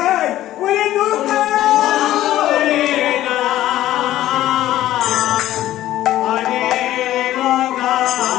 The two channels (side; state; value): right; quieter; 13.9 dB